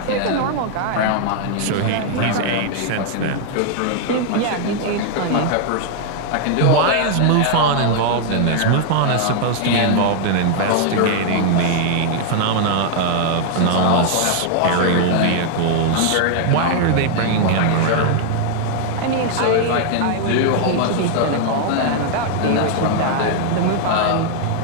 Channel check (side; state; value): both; different; correlation 0.00